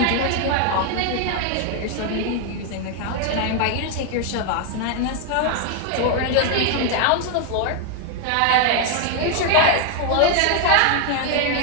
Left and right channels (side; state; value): both; different; correlation 0.00